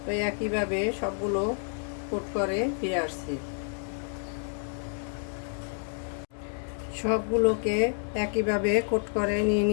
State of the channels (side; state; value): right; silent; 58 dB below the other